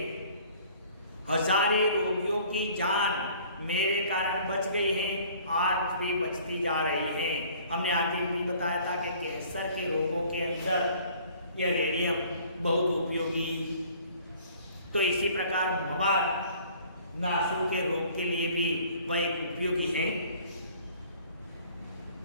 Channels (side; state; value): both; inverted; correlation -0.54